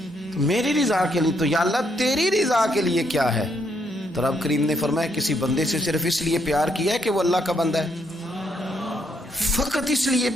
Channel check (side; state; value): both; normal; correlation 0.74